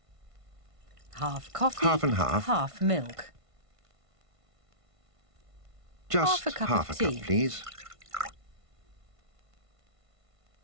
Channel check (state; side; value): late; left; 1.5 ms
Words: Half coffee, Half and half. half milk. Just Half a cup half of a cup, tea. please.